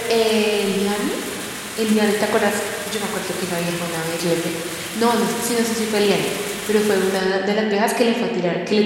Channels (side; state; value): both; identical; correlation 1.00